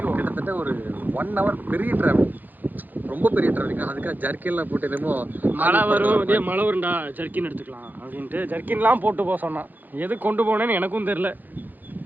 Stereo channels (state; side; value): late; left; 0.085 ms